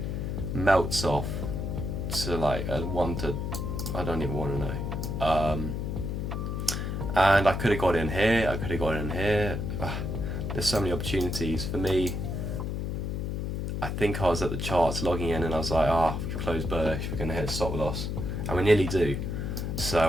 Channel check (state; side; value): noise; left; hum, 2 dB below the sound